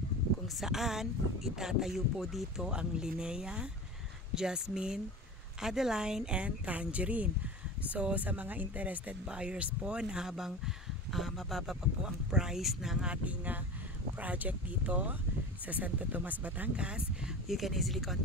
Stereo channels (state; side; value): normal; both; correlation 0.32